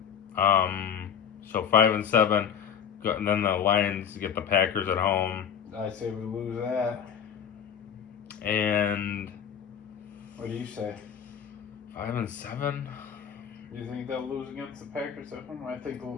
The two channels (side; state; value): right; quieter; 8.2 dB